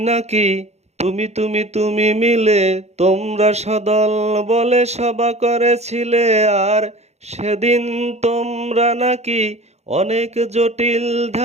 নাকি তুমি মিলে তোমরা সদল বলে সভা করেছিলে। আর সেদিন তোমরা নাকি অনেক জটিল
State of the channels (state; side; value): late; left; 0.32 ms